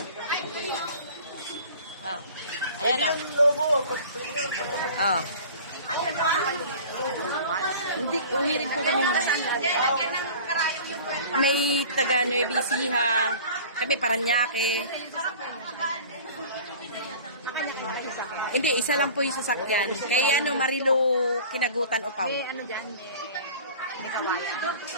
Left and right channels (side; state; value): both; inverted; correlation -0.42